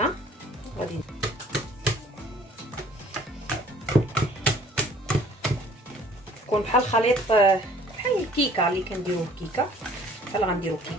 غادي يكون بحال خليط بحال الكيكه اللي كنديروا كيكه، بحال غنديروا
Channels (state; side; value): normal; both; correlation 0.54